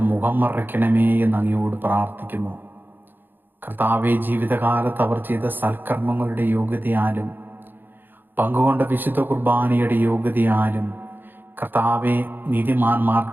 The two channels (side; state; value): left; late; 0.095 ms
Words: മുഖം മറയ്ക്കണമേ എന്ന് അങ്ങയോട് പ്രാർത്ഥിക്കുന്നു. കർത്താവെ, ജീവിതകാലത്ത് അവർ ചെയ്ത സൽക്കർമ്മങ്ങളുടെ യോഗ്യതയാലും പങ്കുകൊണ്ട വിശുദ്ധ കുർബാനയുടെ യോഗ്യതയാലും കർത്താവെ,